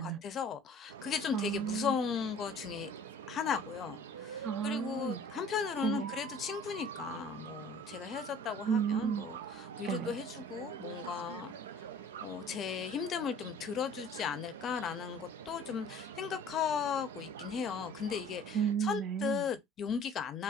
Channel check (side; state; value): both; normal; correlation 0.49